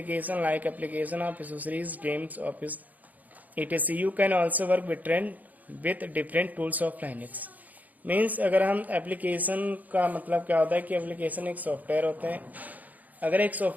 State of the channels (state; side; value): late; left; 0.079 ms